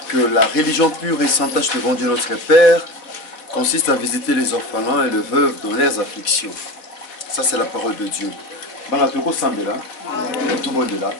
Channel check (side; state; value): right; late; 4.2 ms